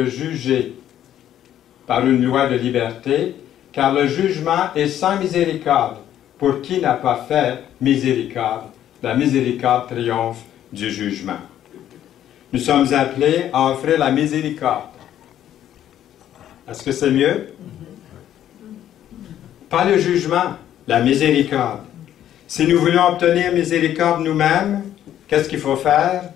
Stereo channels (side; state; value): right; quieter; 11.2 dB